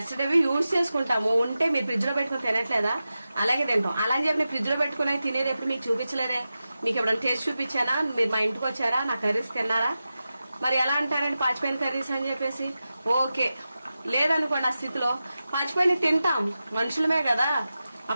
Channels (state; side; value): inverted; both; correlation -0.93